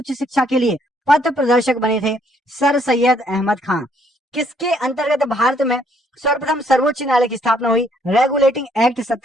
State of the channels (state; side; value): normal; both; correlation 0.67